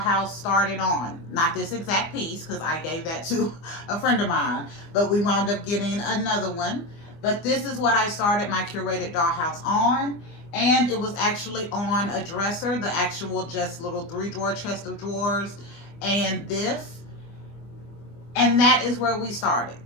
started on. Not this exact piece, because I gave that to a friend of mine, but we wound up getting another one. But this is what I started my curated dollhouse on, and it was actually on a dresser, the actual just little 3-drawer chest of drawers, and this. And that is where we started.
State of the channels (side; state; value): right; late; 24 ms